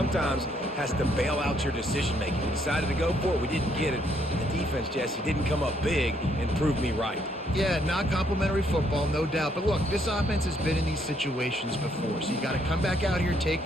has to bail out your decision-making. We decided to go for it. We didn't get it. The defense, Jesse, didn't come up big and prove me right. Yeah, not complimentary football, no doubt. But look, this offense has been in these situations before, so you got to come back out here, take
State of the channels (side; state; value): both; normal; correlation 0.70